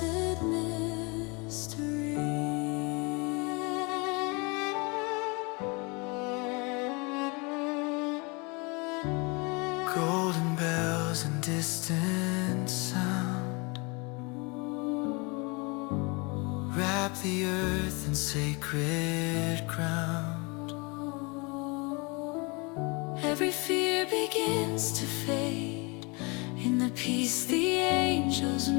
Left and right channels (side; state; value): right; quieter; 29.4 dB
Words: mystery. Golden bells and distant sound wrap the earth in sacred ground. Every fear begins to fade in the peace the angels